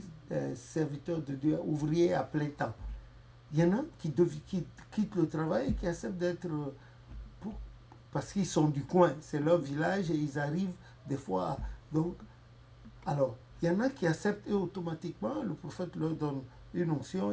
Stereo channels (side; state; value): both; identical; correlation 1.00